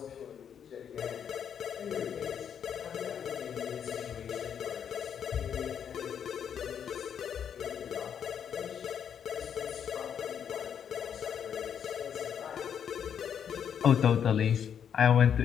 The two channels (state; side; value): quieter; right; 8.2 dB